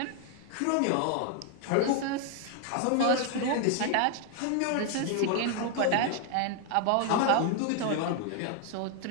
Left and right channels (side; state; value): both; different; correlation 0.00